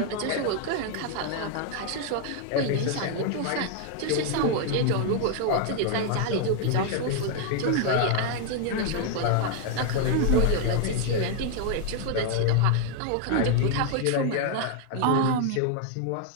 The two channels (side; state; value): both; different; correlation 0.00